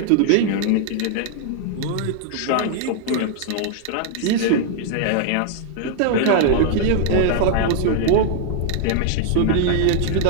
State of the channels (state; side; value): different; both; correlation 0.00